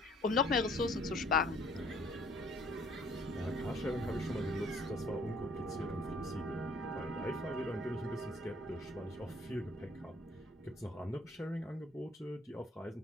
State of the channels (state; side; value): normal; both; correlation 0.58